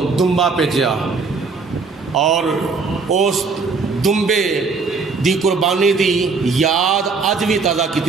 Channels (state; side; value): quieter; left; 4.6 dB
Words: دمبا بھیجیا، اور اس دمبے دی قربانی دی یاد اج بھی تازہ